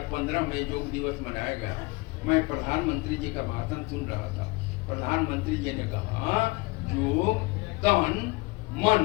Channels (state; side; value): quieter; right; 25.0 dB